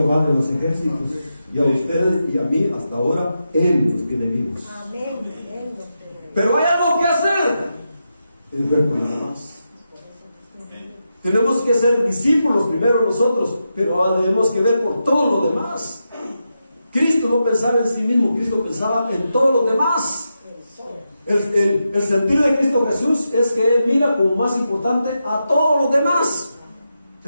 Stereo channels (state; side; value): inverted; both; correlation -0.87